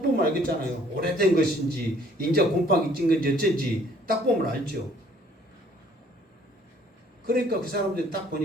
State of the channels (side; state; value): both; normal; correlation 0.59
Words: 보면 알겠잖아요. 오래된 것인지 인자 곰팡이 찐 건지 어쩐지 딱 보면 알죠. 그러니까 그 사람들이 딱